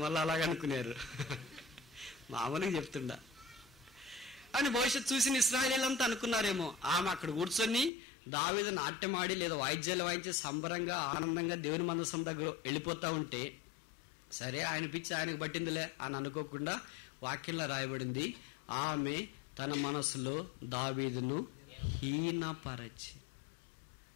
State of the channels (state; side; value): drops out; right; at 7.9 s